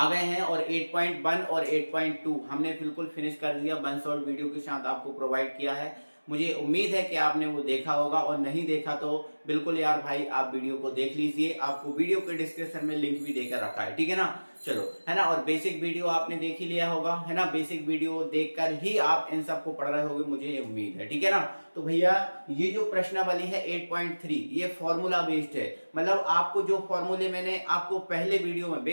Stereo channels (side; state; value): both; inverted; correlation -1.00